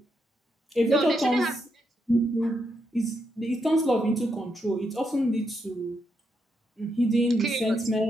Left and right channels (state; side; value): normal; both; correlation 0.81